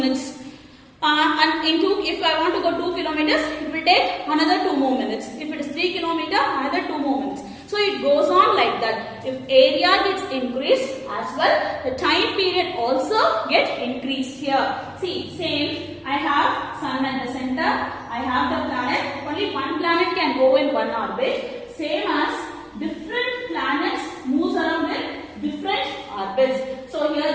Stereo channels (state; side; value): identical; both; correlation 1.00